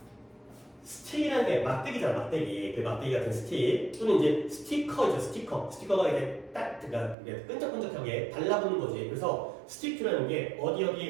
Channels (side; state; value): left; drops out; at 7.2 s